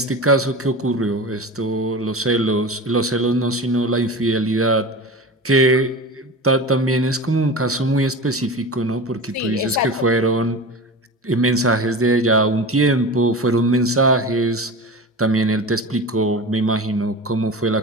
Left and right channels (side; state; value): both; normal; correlation 0.30